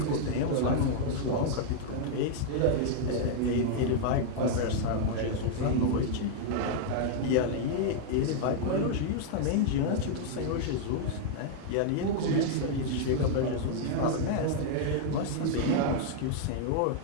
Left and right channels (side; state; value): both; different; correlation -0.01